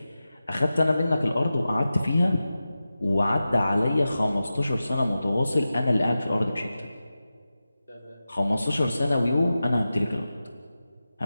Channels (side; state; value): both; inverted; correlation -0.94